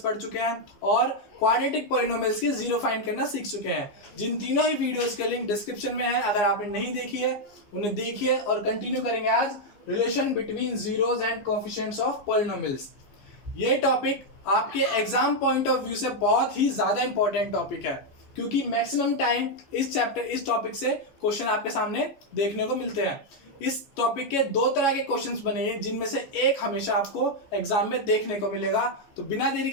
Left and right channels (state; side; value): late; right; 15 ms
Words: चुके हैं और क्वाड्रेटिक पॉलिनोमियल्स के जीरो फाइंड करना सीख चुके हैं। जिन तीनों ही वीडियोस के लिंक डिस्क्रिप्शन में है, अगर आपने नहीं देखी है उन्हें देखिए। और कंटिन्यू करेंगे आज relation between zeros and coefficients of polynomials. ये टॉपिक आपके एग्जाम पॉइंट ऑफ व्यू से बहुत ही ज्यादा इंपॉर्टेंट टॉपिक है, क्योंकि मैक्सिमम टाइम इस टॉपिक से क्वेश्चन आपके सामने देखने को मिलते हैं। इस टॉपिक के दो तरह के क्वेश्चंस बने हैं, जिनमें से एक हमेशा आपको एग्जाम में देखने को मिलेगा। तो बिना देरी